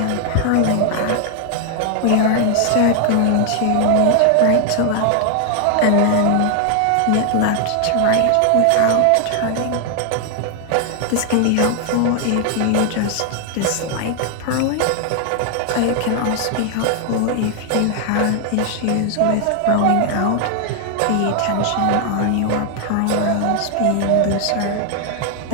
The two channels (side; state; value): both; different; correlation 0.00